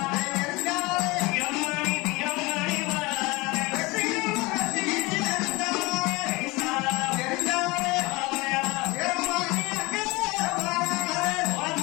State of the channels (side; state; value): right; quieter; 23.6 dB